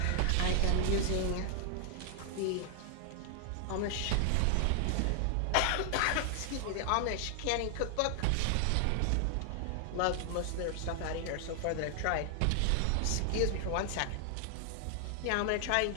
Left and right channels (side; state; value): both; different; correlation 0.00